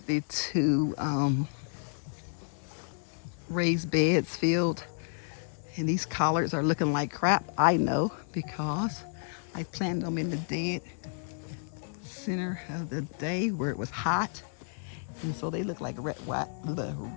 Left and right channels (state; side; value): silent; right; 57 dB below the other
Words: the 2 raised beds filled, and these collards are looking like crap. I know, because I planted them in the dead center of the day where it was hot, and so they look like wet